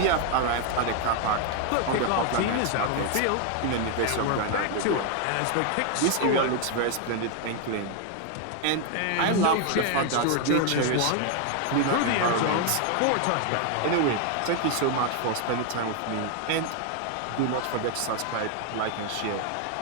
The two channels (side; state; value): both; different; correlation 0.00